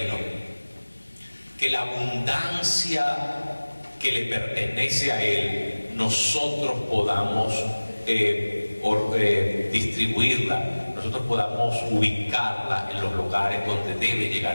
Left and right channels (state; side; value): inverted; both; correlation -1.00